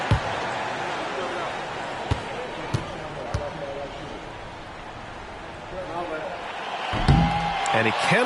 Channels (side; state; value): both; identical; correlation 1.00